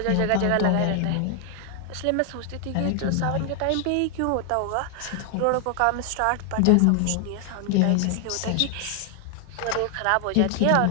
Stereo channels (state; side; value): different; both; correlation 0.00